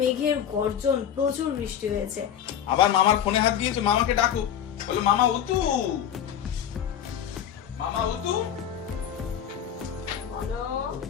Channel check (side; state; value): right; quieter; 9.3 dB